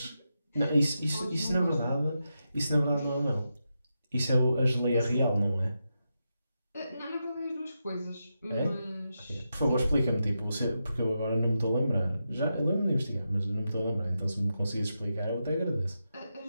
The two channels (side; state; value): both; inverted; correlation -0.88